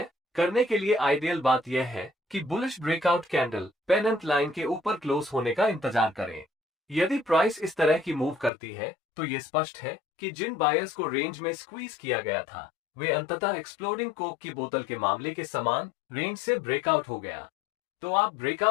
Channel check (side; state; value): right; drops out; at 8.5 s